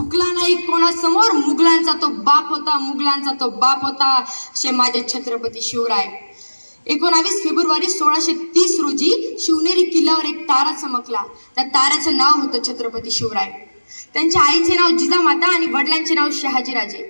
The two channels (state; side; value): inverted; both; correlation -1.00